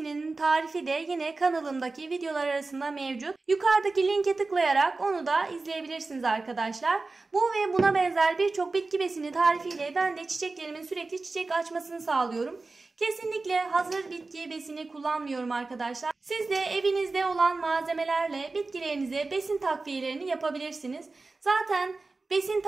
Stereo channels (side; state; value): left; quieter; 3.6 dB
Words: tarifi de yine kanalımdaki videolar arasında mevcut. Yukarıdaki linke tıklayarak onu da izleyebilirsiniz arkadaşlar. Bu ve buna benzer birçok bitki besini tarifiyle ben de çiçeklerimin sürekli çiçek açmasını sağlıyorum. Kesinlikle hazır bitki besini kullanmıyorum arkadaşlar. Siz de evinizde olan malzemelerle bitkilerinize besin takviyelerini yapabilirsiniz. Zaten besin